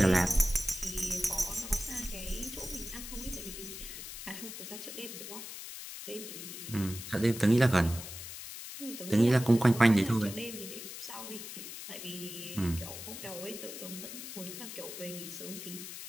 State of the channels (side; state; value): left; noise; hiss, 10 dB below the sound